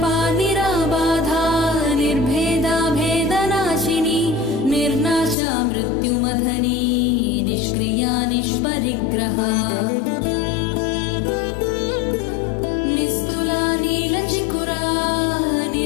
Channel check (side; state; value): right; drops out; at 5.4 s